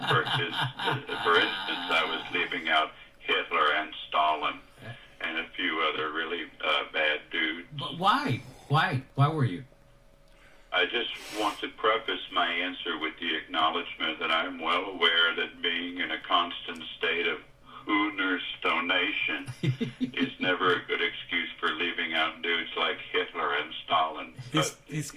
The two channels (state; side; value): identical; both; correlation 1.00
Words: For instance, I was leaving out Hitler and Stalin and a few other really bad dudes. But why? Why were you? I just want to preface my answer with the acknowledgement that I'm well aware that being in a constant state of Hooner's stonation is never a good excuse for leaving out dudes like Hitler and Stalin. He's